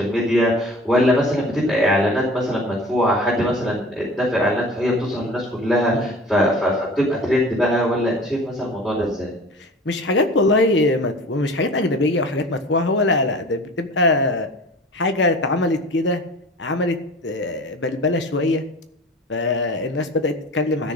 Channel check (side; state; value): both; normal; correlation 0.40